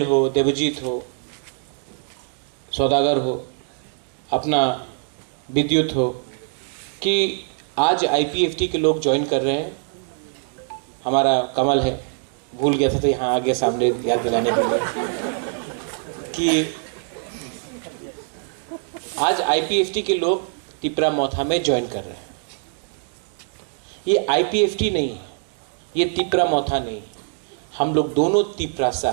हो, देवजीत हो, सौदागर हो, अपना विद्युत हो, कि आज IPFT के लोग ज्वाइन कर रहे हैं। हमारा कमल है, भूल गया था तो यहाँ आगे सामने याद दिलाने के लिए कि आज IPFT के लोग तिपरा मोथा में ज्वाइन कर रहे हैं। ये IPFT नहीं है, ये तिपरा मोथा नहीं है, हम लोग दोनों तिपरासा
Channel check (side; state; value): left; silent; digital silence